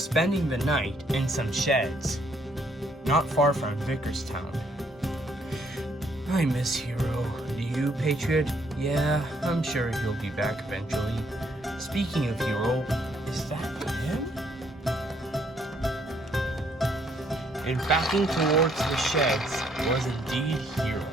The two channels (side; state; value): both; normal; correlation 0.69